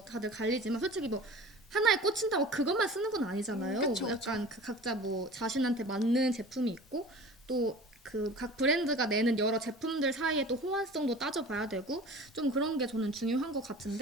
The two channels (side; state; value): both; normal; correlation 0.40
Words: 다들 갈리지만 솔직히 뭐 하나에 꽂힌다고 그것만 쓰는 건 아니잖아요. 그쵸, 뭐 약간 그 각자 뭐 자신한테 맞는 제품이 있고 또 그 각 브랜드가 내는 여러 제품들 사이에 또 호환성도 따져봐야 되고 좀 그런 게 저는 중요한 것